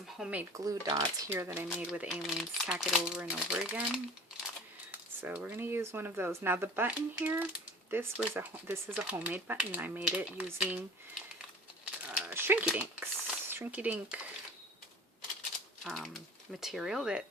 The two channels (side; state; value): both; normal; correlation 0.43